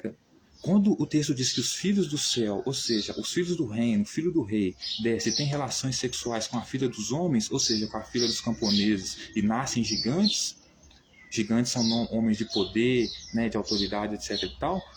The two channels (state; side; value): identical; both; correlation 1.00